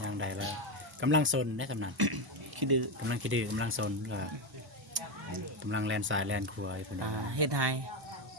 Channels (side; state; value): both; normal; correlation 0.11